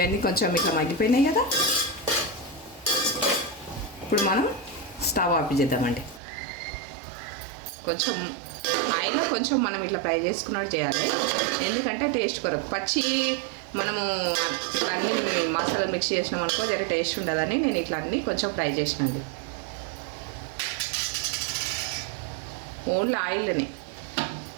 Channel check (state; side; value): drops out; left; at 6.2 s